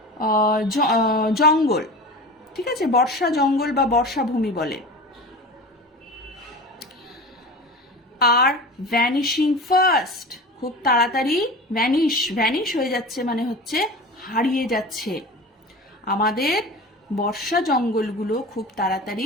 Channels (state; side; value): normal; both; correlation 0.33